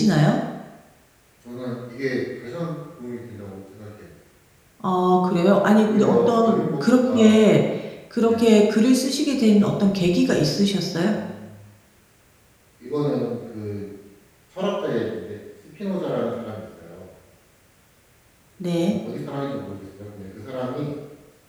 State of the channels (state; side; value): identical; both; correlation 1.00